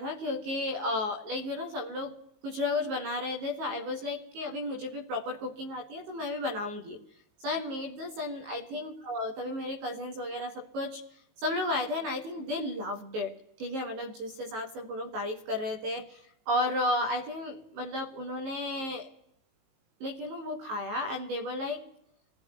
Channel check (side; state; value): left; late; 19 ms